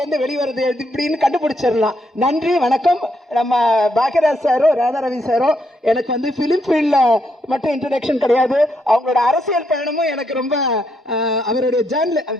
வெளிவருது எப்படின்னு கண்டுபிடிச்சிடலாம். நன்றி, வணக்கம். நம்ம பாக்யராஜ் சாரோ ராதாரவி சாரோ எனக்கு வந்து ஃபிலிம் ஃபீல்டில் மட்டும் இன்ட்ரடக்ஷன் கிடையாது, அவங்களோட அரசியல் பயணமும் எனக்கு ரொம்ப அவருடைய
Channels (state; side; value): normal; both; correlation 0.77